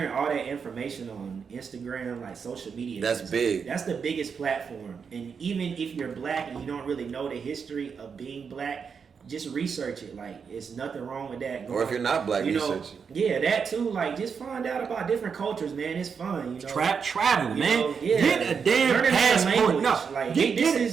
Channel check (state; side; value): quieter; left; 6.2 dB